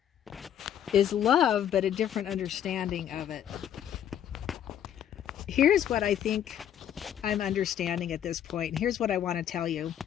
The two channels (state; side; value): quieter; right; 10.0 dB